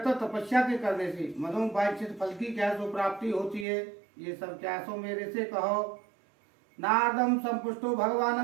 तपस्या के करने से मनोवांछित फल की क्या सो प्राप्ति होती है, ये सब क्या सो मेरे से कहो। नारदम संपुष्टो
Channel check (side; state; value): left; drops out; at 3.7 s